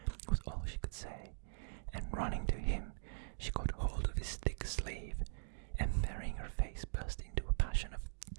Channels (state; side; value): silent; left; digital silence